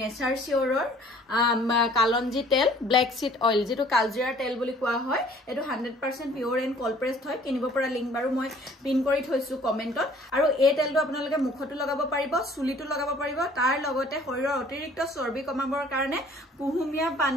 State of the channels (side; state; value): both; normal; correlation 0.54